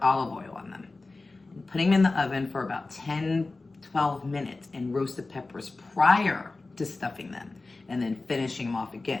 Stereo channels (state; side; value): quieter; right; 3.4 dB